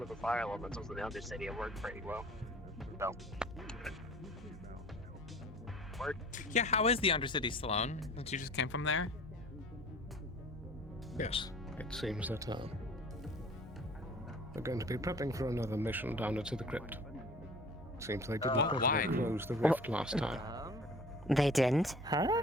of the fire elementals in the Undercity. It worked pretty well. So, worked. Yeah, how is the Undercity, Sloan? Since you just came from there? Yes, it seems that we're going to be prepping for another mission down into the crypt. Seems they didn't properly why? close the rift last time. They didn't? Huh?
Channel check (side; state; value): both; normal; correlation 0.46